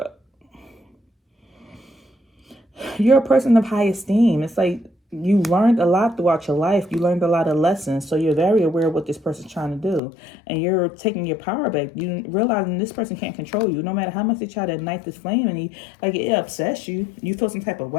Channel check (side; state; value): right; drops out; at 10.0 s